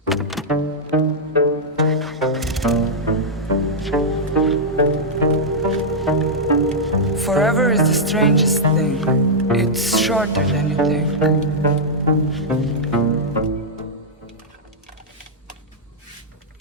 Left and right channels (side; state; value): both; normal; correlation -0.07